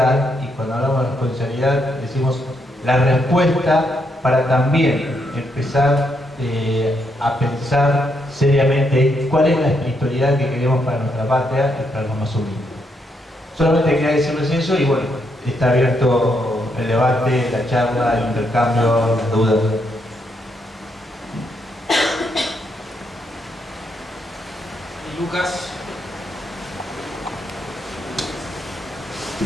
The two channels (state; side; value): normal; both; correlation 0.77